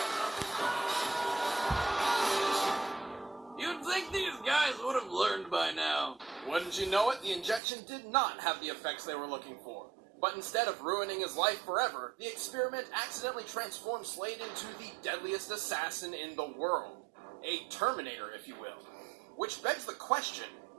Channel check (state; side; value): drops out; left; at 7.6 s